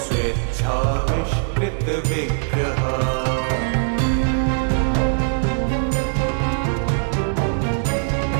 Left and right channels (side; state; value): left; silent; 65 dB below the other